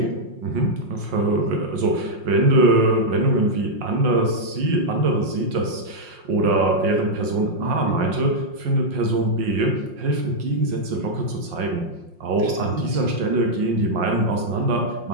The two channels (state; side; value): late; left; 5.6 ms